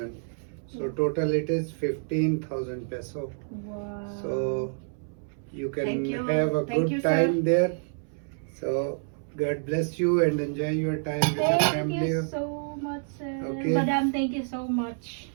So total it is 15,000 peso. Wow. So you can Thank you. have a Thank good you, sir. time there. So God bless you and enjoy your time with the Thank family. you so much, sir. Okay. Madam, thank you so much.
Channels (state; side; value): silent; left; 59 dB below the other